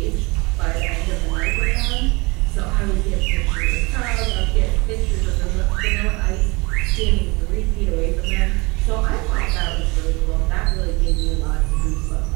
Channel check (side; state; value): left; quieter; 25.9 dB